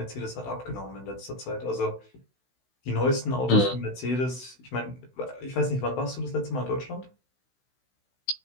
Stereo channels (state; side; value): late; right; 16 ms